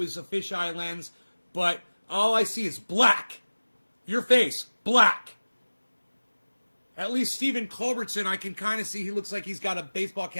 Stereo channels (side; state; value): both; inverted; correlation -1.00